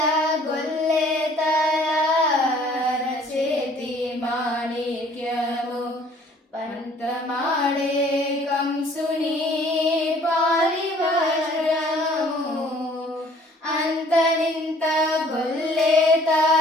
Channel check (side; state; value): both; normal; correlation 0.56